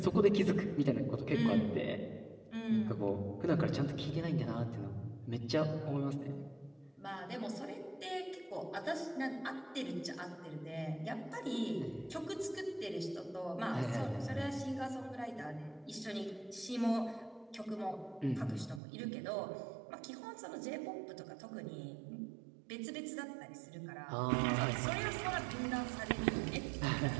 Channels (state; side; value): drops out; left; at 18.8 s